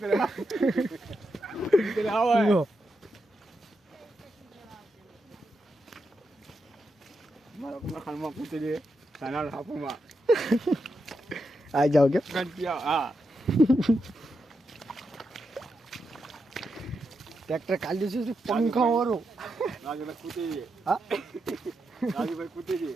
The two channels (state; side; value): normal; both; correlation 0.85